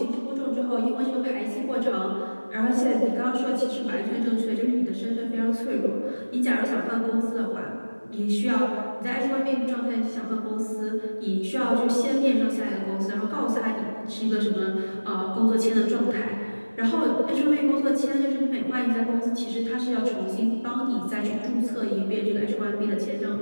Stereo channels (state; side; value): inverted; both; correlation -1.00